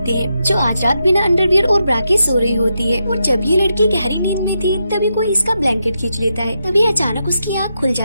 हैं जो आज रात बिना अंडरवियर और ब्रा के सो रही होती है। और जब ये लड़की गहरी नींद में थी तभी कोई इसका ब्लैंकेट खींच लेता है। तभी अचानक उसकी आँख खुल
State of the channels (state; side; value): inverted; both; correlation -0.84